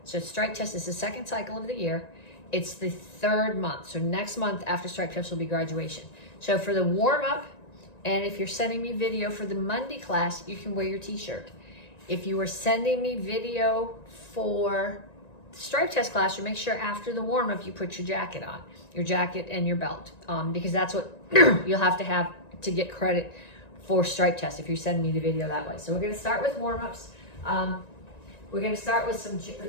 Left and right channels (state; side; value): late; right; 1.9 ms